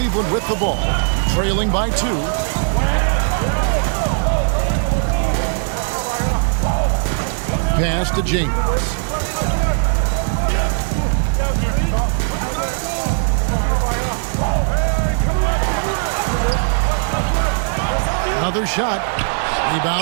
with the ball, trailing by 2. Pass to James. Another shot.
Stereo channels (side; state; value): left; silent; digital silence